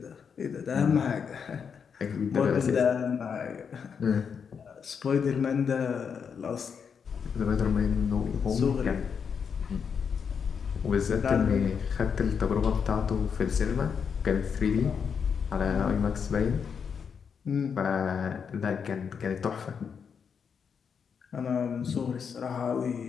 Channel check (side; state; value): right; quieter; 6.6 dB